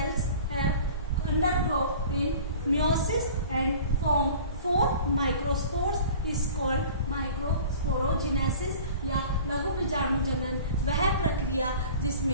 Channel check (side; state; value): both; inverted; correlation -0.43